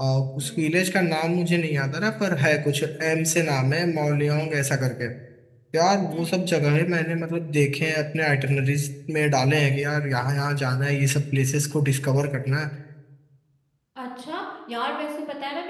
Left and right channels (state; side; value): identical; both; correlation 1.00